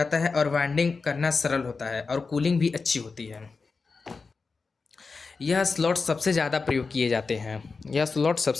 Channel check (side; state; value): right; quieter; 4.5 dB